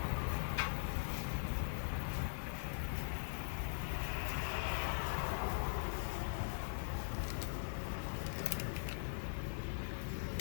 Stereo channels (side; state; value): right; silent; digital silence